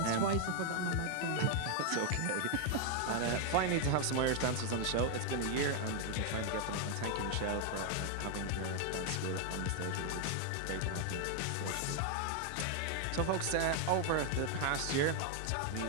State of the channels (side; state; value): both; different; correlation 0.00